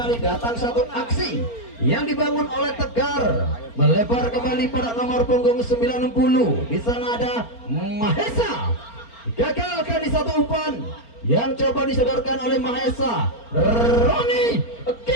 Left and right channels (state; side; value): late; right; 4.4 ms